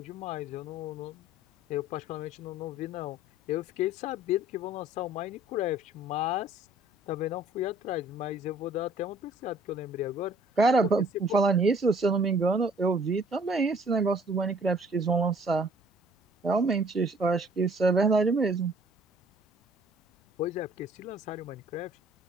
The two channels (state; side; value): normal; both; correlation 0.57